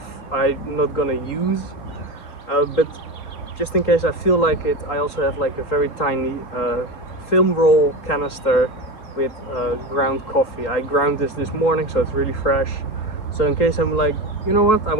I'm not gonna use. But just in case I feel like it, I also have like a very tiny film roll canister with ground coffee. I ground this morning, so it's really fresh. So in case I'm like, you know what, I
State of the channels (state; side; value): late; right; 3.7 ms